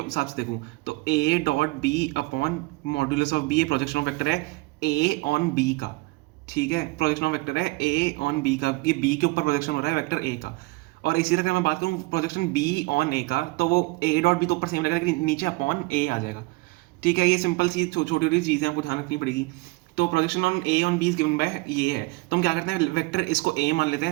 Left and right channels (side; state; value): left; quieter; 23.9 dB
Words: से देखूँ तो A dot B upon modulus of B, ये प्रोजेक्शन ऑफ वेक्टर है ए ऑन बी का। ठीक है, प्रोजेक्शन ऑफ वेक्टर है ए ऑन बी का, ये बी के ऊपर प्रोजेक्शन हो रहा है वेक्टर ए का। और इसी तरह अगर मैं बात करूँ प्रोजेक्शन बी ऑन ए का, तो वो ए डॉट बी तो ऊपर सेम रहेगा लेकिन नीचे अपॉन ए आ जाएगा। ठीक है, ये सिंपल सी छोटी छोटी चीज़ें आपको ध्यान रखनी पड़ेगी। तो projection on A on B is given by ये है, तो हम क्या करते हैं वेक्टर इसको ए मान लेते हैं,